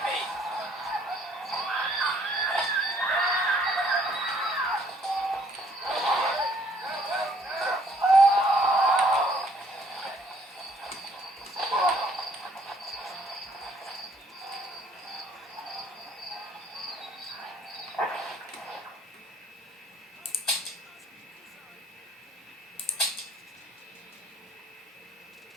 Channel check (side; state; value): both; normal; correlation 0.63